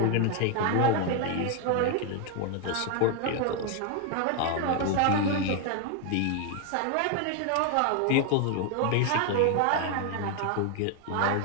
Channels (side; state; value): both; different; correlation 0.00